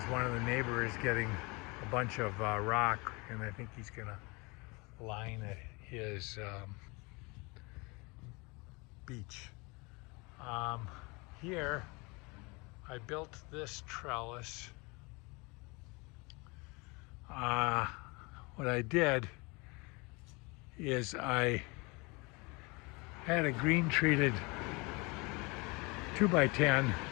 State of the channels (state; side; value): quieter; right; 27.4 dB